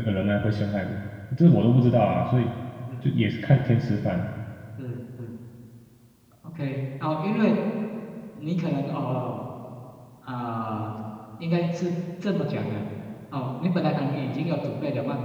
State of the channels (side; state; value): both; identical; correlation 1.00